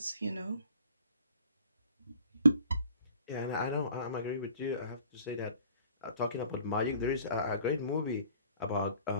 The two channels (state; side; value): inverted; both; correlation -0.52